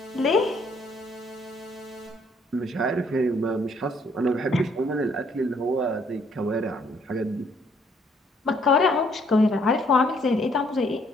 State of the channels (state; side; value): normal; both; correlation 0.66